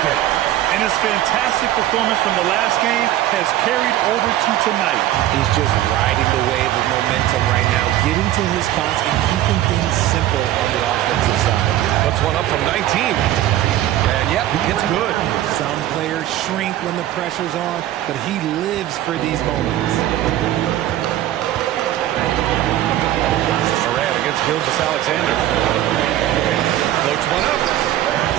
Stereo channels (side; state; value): left; quieter; 13.3 dB